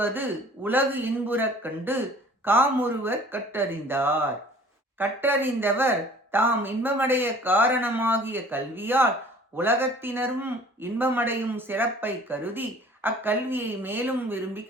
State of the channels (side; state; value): both; normal; correlation 0.50